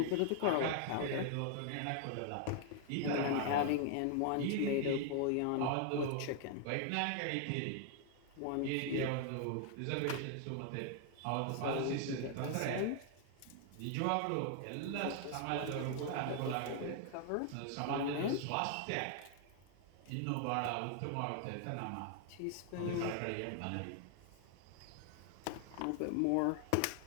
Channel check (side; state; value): both; different; correlation 0.00